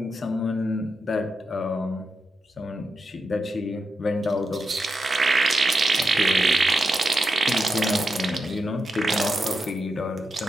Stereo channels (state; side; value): normal; both; correlation 0.84